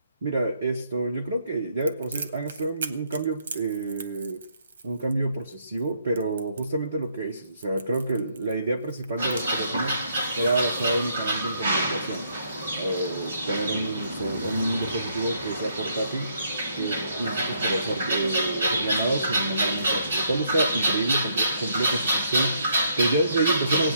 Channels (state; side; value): inverted; both; correlation -0.71